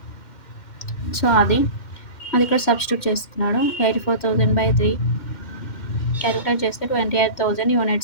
సో అది ఇక్కడ సబ్స్టిట్యూట్ చేస్తున్నాడు. 84,000 by 3 క్యాలిక్యులేట్ చేస్తే 28,000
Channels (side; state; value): right; late; 2.1 ms